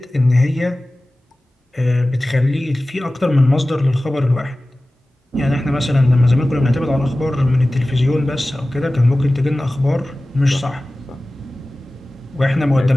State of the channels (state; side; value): normal; both; correlation 0.97